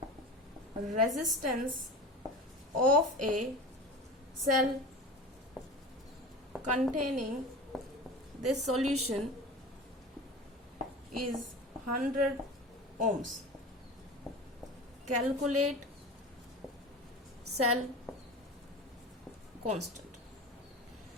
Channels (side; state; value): both; normal; correlation 0.34